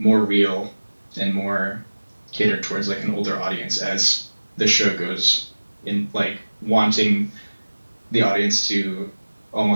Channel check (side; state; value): both; inverted; correlation -1.00